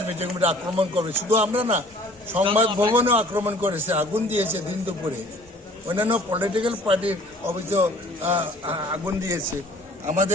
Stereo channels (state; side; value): normal; both; correlation 0.52